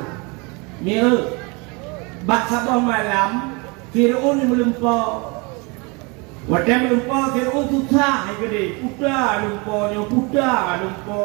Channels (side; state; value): left; quieter; 29.0 dB